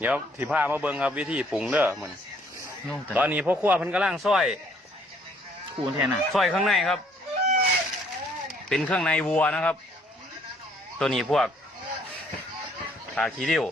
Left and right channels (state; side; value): normal; both; correlation 0.64